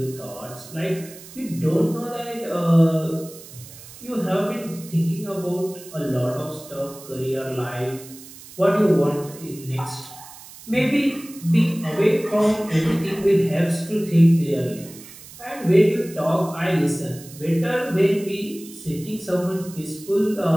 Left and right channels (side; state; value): right; noise; hiss, 18 dB below the sound